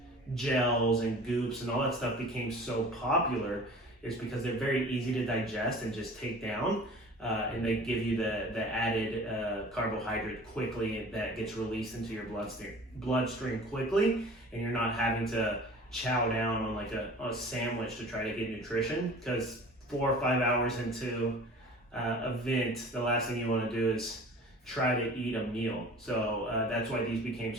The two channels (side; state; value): both; normal; correlation 0.43